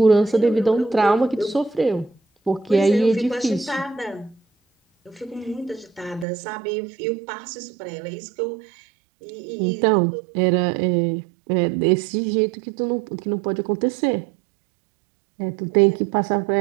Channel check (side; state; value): left; drops out; at 6.2 s